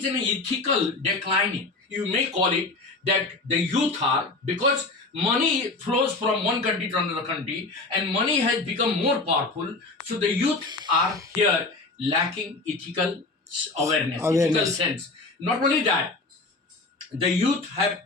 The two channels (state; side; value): quieter; right; 3.4 dB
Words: an ethical declining. You may call it that the youth are, because money flows from one country to another country, and money has become more powerful. So the youth are here lacking ethical awareness. Ethical sense. Not only that, the youth have